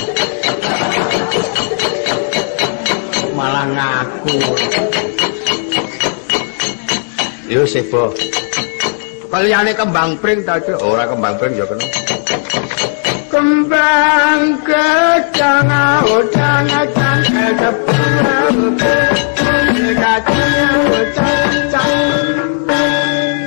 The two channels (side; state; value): right; silent; 64 dB below the other